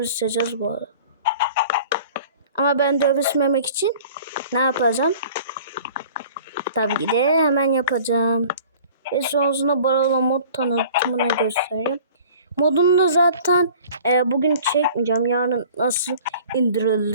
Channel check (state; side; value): inverted; both; correlation -0.47